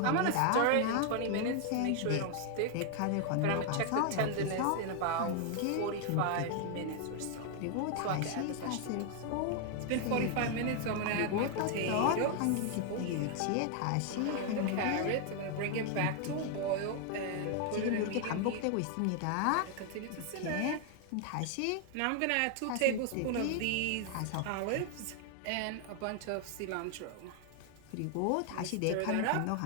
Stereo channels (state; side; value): different; both; correlation 0.00